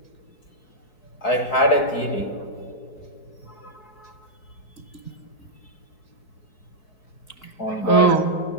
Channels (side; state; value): right; late; 4.6 ms